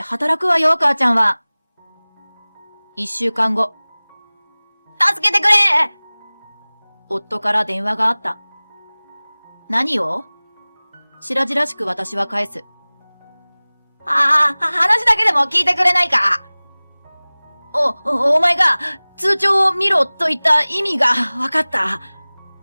くわよ、母ちゃんは。1週間後。助けてくれ夫から電話があった。何を白々しく私は返す。話だけでも聞いてくれないか。お前が通帳を見ろと言った意味がわかった。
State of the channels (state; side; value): inverted; both; correlation -1.00